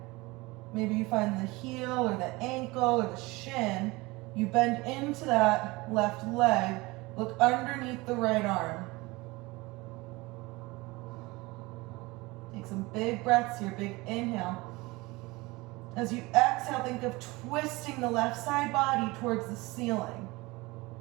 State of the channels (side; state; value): left; quieter; 22.7 dB